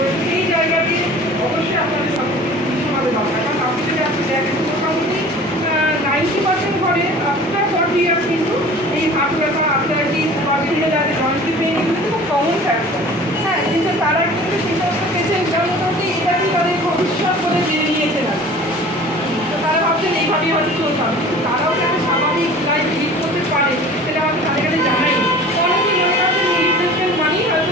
সেই জায়গাতে অবশ্যই আপনাদের সচেতন দরকার, কারণ আপনি যদি আপনি দেখেন মোটামুটি 90% ঘরে আফটার 40 ইয়ার্স কিন্তু এই হার্ট ব্যথা আর্থারাইটিস বা বিভিন্ন জায়গায় জয়েন্ট পেইন এগুলো খুব কমন ফ্যাক্টর। হ্যাঁ, কিন্তু তারা কিন্তু সেই সমস্ত পেশেন্ট মোটামুটি এটাকেই তাদের ভবিষ্যৎ বলে জেনে নিয়েছে না। তো তারা ভাবছেন এইভাবেই হয়তো চলতে হবে, কিন্তু তারাও যাতে স্বাভাবিক লাইফ লিড করতে পারে সেটা হয়তো তাদের কাছে জানাই। অনেকেই মনে করছেন রিপ্লেসমেন্ট মানেই হয়তো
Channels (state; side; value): normal; both; correlation 0.43